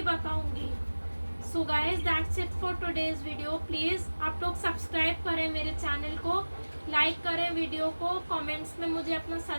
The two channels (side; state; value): both; inverted; correlation -1.00